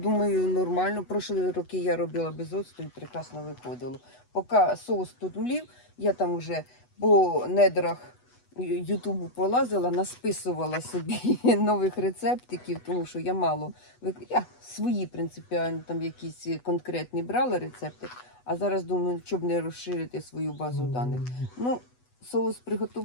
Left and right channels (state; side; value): late; right; 8.1 ms